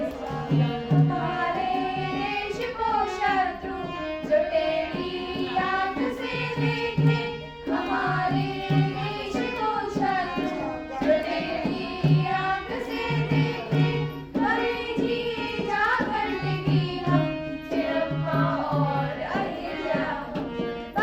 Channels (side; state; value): both; identical; correlation 1.00